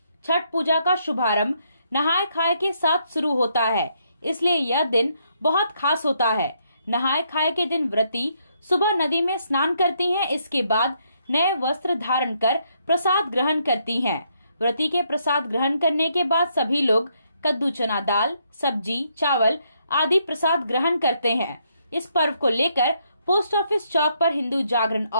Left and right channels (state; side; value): inverted; both; correlation -0.74